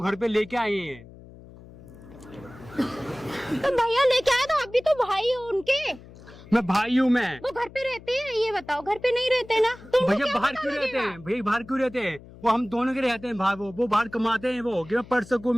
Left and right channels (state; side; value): noise; left; hum, 19 dB below the sound